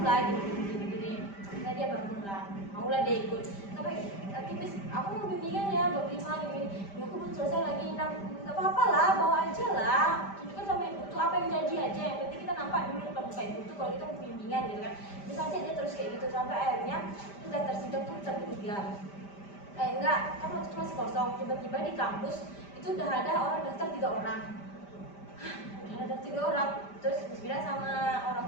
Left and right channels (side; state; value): right; late; 5.1 ms